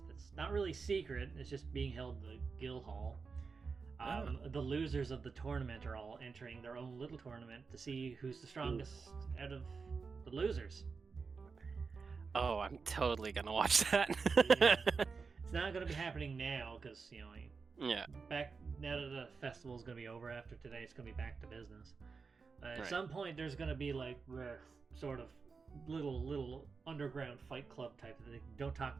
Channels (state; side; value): quieter; left; 4.9 dB